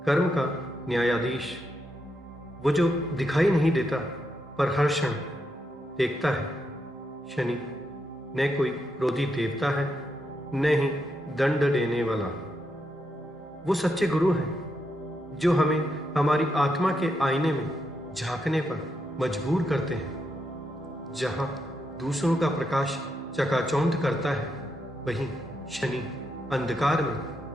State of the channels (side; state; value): both; normal; correlation 0.82